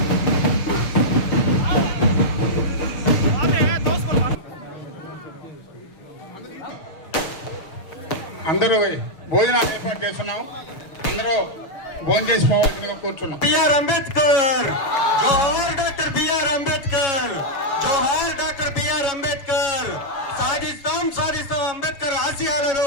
అందరూ భోజనాలు ఏర్పాటు చేస్తున్నాం. అందరూ భోజనం చేసుకోవాల్సిందిగా కూర్చున్నాం. బిఆర్ అంబేద్కర్ జోహార్, డాక్టర్ బిఆర్ అంబేద్కర్ జోహార్, డాక్టర్ బిఆర్ అంబేద్కర్. సాధిస్తాం సాధిస్తాం అంబేద్కర్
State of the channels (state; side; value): late; right; 7.2 ms